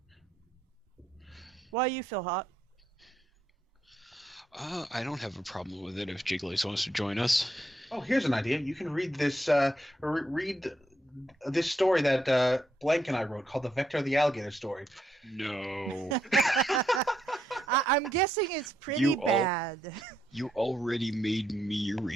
Why you feel hot? I don't have a problem with it if Jigglies wants to join us. Oh, here's an idea. You can read this read this story that Blank and I wrote called The Vector of the Alligator Story. No. I'm guessing it's pretty bad. You already made me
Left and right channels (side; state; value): both; normal; correlation 0.77